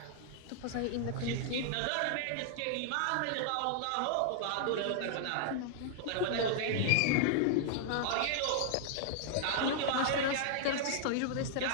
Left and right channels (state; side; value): different; both; correlation -0.01